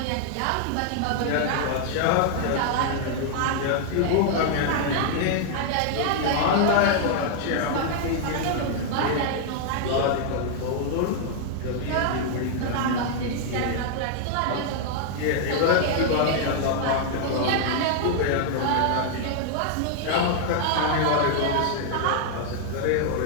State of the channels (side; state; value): both; different; correlation -0.01